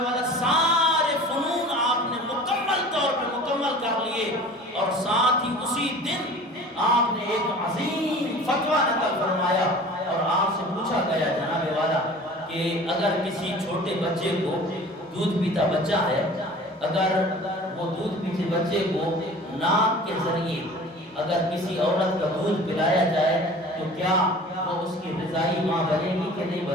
والا سارے فنون آپ نے مکمل طور پہ مکمل کر لیے، اور ساتھ ہی اسی دن آپ نے ایک عظیم فتویٰ نقل فرمایا، اور آپ سے پوچھا گیا جناب والا کہ اگر کسی چھوٹے بچے کو، دودھ پیتا بچہ ہے، اگر وہ دودھ پیتے بچے کو ناک کے ذریعے اگر کسی عورت کا دودھ پلایا جائے تو کیا وہ اس کی رضائی ماں بنے گی کہ نہیں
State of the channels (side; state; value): both; normal; correlation 0.43